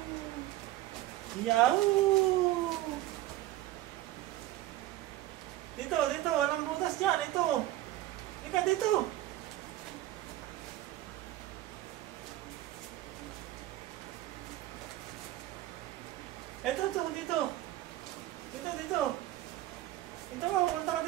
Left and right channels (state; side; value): quieter; left; 15.2 dB